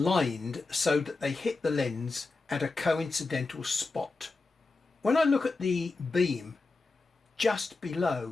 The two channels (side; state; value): right; quieter; 3.7 dB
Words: so that they hit the lens at a coincidental spot. When I look at the beam just